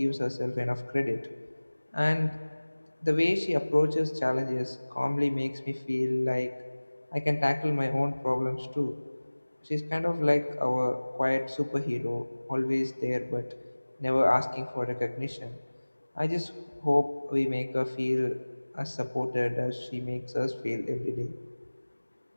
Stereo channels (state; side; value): inverted; both; correlation -1.00